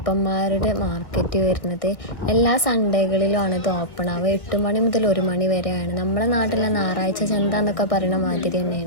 മാർക്കറ്റ് വരുന്നത്. എല്ലാ സൺഡേകളിലുമാണ് ഇത് ഓപ്പൺ ആവുക. 8 മണി മുതൽ 1 മണി വരെയാണ്. നമ്മളെ നാട്ടിലെ ഞായറാഴ്ച ചന്ത എന്നൊക്കെ പറയുന്ന മാതിരി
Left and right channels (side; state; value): right; late; 1.6 ms